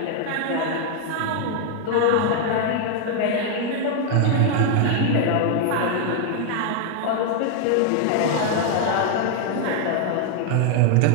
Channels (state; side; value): different; both; correlation 0.00